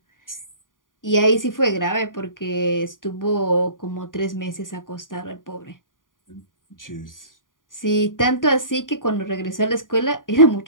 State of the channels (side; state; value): right; late; 0.89 ms